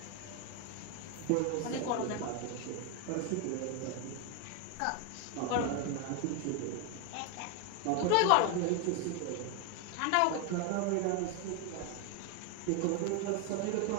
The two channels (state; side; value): different; both; correlation 0.01